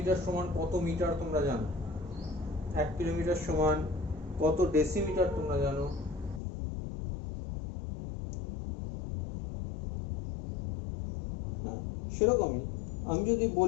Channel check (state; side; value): drops out; right; at 6.4 s